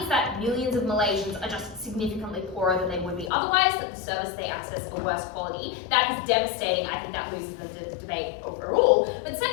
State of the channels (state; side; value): drops out; right; at 3.3 s